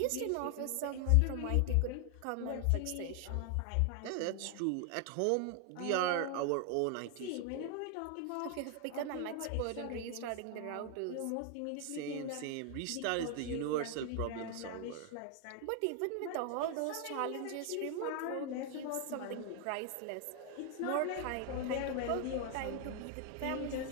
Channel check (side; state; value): both; different; correlation 0.00